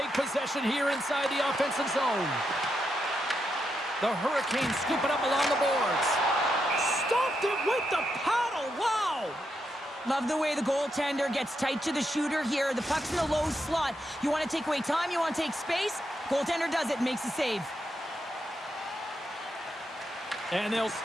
possession here inside the offensive zone. The Hurricanes scoop it up along the boards. Stopped it with the paddle. Wow! Love the way the goaltender gets tight to the shooter here. The puck's in the low slot. You want to take away time, you want to take space. Goaltender does it, makes a save. And they'll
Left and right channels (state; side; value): normal; both; correlation 0.83